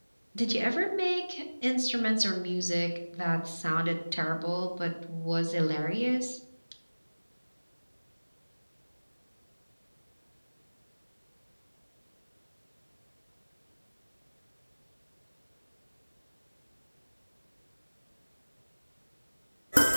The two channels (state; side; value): inverted; both; correlation -1.00